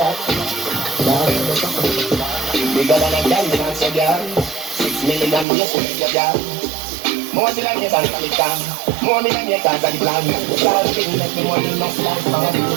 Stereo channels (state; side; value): drops out; left; at 5.5 s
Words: Now you're suffering. Bigger than a dance, so girl. 6 million years with your girl. More till I get on the time. More me than your cars are the plan. Girl, she make me money in my life.